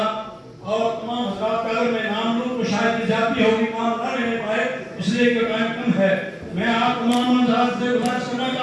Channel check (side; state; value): both; identical; correlation 1.00